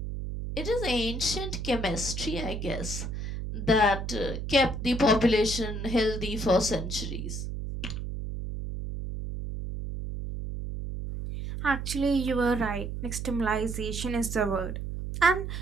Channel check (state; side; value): noise; right; hum, 5 dB below the sound